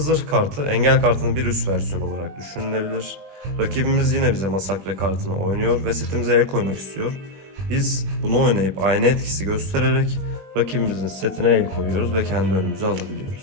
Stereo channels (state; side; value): late; left; 21 ms